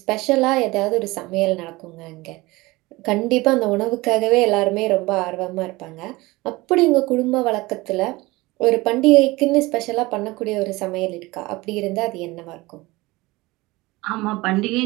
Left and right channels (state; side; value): quieter; left; 21.3 dB